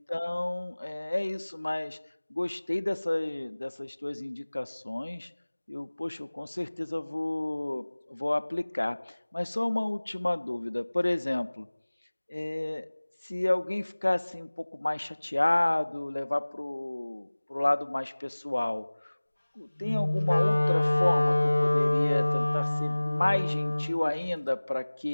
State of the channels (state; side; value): inverted; both; correlation -1.00